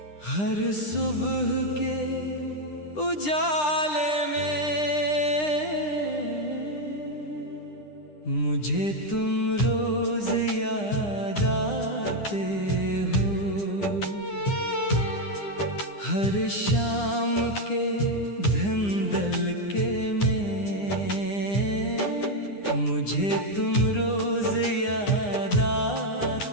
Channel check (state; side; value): late; right; 9.9 ms